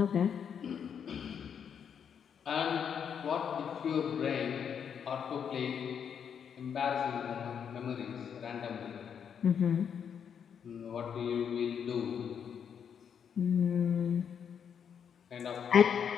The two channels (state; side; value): quieter; right; 7.7 dB